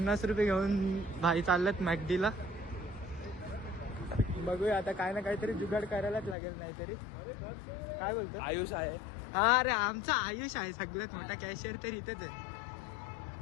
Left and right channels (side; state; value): right; drops out; at 6.4 s